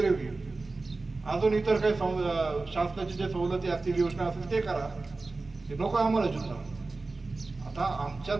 होईल, अजून इतर काही शासनाच्या जे सवलती असतील, योजना असतील ते करा, ते नको आम्हाला जुन्नर। आता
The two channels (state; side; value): quieter; left; 3.5 dB